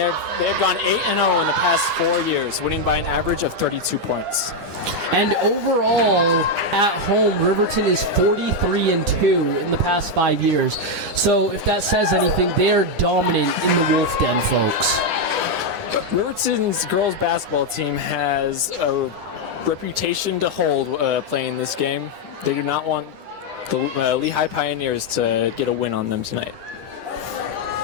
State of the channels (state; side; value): late; left; 10 ms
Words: gone 8-0 in the past 4 years, winning by an average of 32 points. And overall, at home, Riverton is 43-2 in the past 5 years. So if that says anything, they are dominant in the Wolf Den, folks. Riverton's girls basketball team has a reputation to hold playing this game. They do not want the Lehi Pioneers to get a win on them tonight.